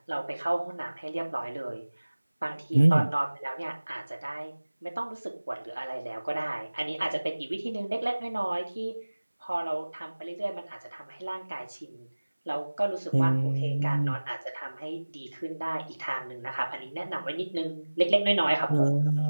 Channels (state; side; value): inverted; both; correlation -1.00